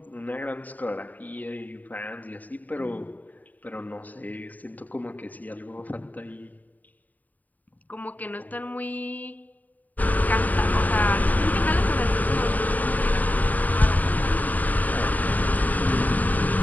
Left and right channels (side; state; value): right; late; 0.080 ms